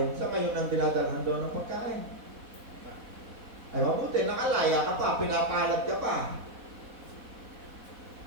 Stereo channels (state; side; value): late; left; 4.1 ms